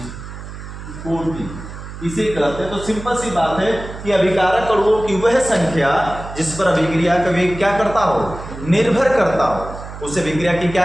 कोटि इसे कहते हैं। तो सिंपल सी बात है कि अभिकारक अणुओं की वह संख्या जिस पर अभिक्रिया का वेग क्या करता हो, निर्भर करता हो, उसे अभिक्रिया की क्या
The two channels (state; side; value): noise; right; hum, 12 dB below the sound